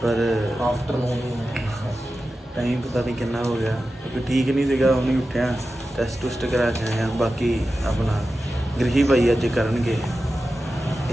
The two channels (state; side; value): normal; both; correlation 0.93